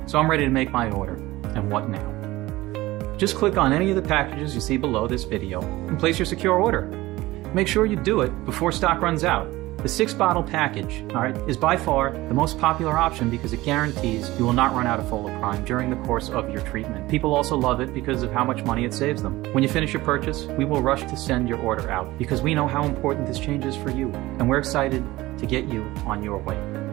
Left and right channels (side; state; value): left; quieter; 18.5 dB